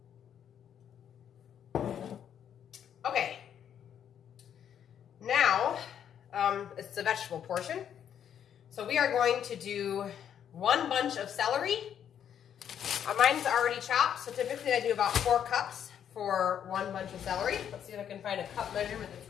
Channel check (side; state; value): right; quieter; 9.1 dB